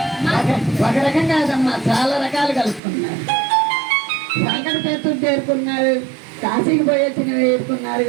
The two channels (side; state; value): left; drops out; at 2.8 s